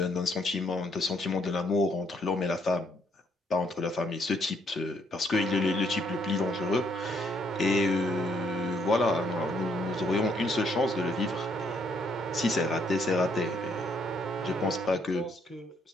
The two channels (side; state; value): both; normal; correlation 0.70